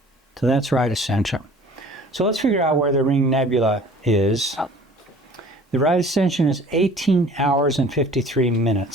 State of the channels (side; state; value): both; normal; correlation 0.48